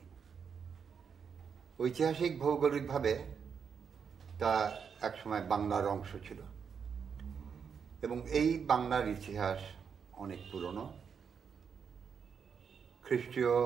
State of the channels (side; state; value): left; quieter; 6.7 dB